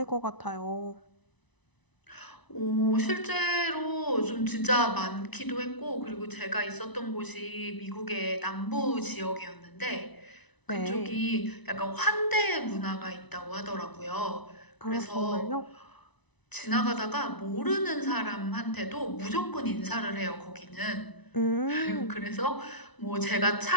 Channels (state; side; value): late; right; 1.0 ms